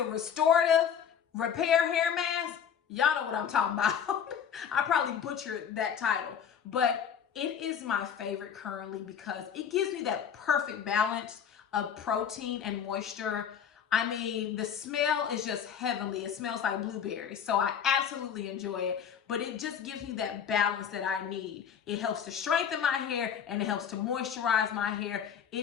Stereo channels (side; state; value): right; quieter; 8.0 dB